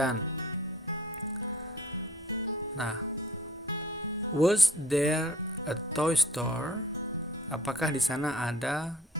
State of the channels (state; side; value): normal; both; correlation 0.51